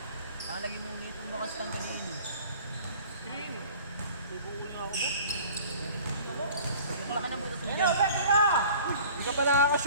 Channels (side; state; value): both; inverted; correlation -0.46